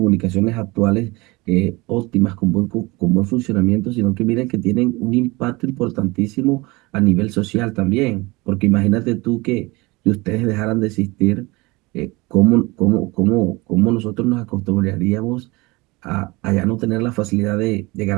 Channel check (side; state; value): left; quieter; 23.4 dB